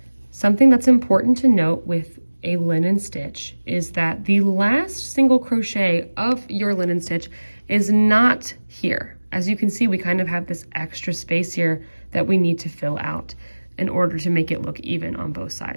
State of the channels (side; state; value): both; inverted; correlation -1.00